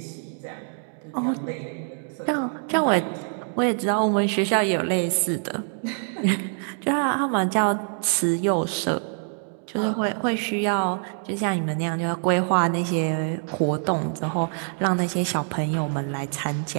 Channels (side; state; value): left; silent; 61 dB below the other